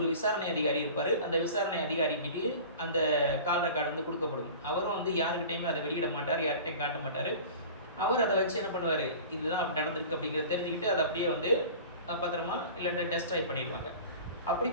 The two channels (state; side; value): inverted; both; correlation -0.39